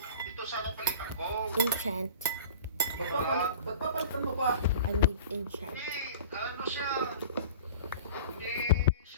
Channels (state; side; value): inverted; both; correlation -0.41